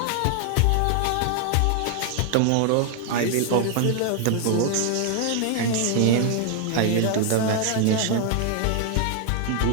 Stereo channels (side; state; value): both; different; correlation 0.00